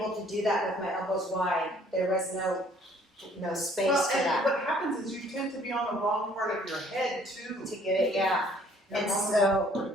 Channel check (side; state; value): both; normal; correlation 0.59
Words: to do that with my elbows wide. There was no space Well, for and that what happens is you tend to be on the wrong part of your head too. to get it, yeah. You're And on the so- wrong part